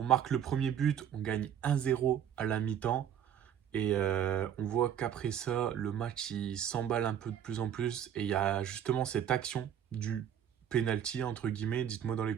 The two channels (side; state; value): left; quieter; 9.3 dB